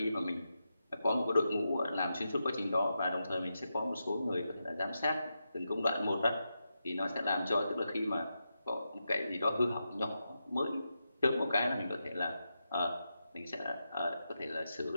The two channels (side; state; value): both; inverted; correlation -0.87